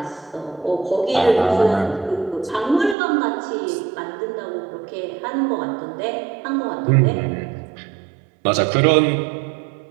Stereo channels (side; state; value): left; drops out; at 3.0 s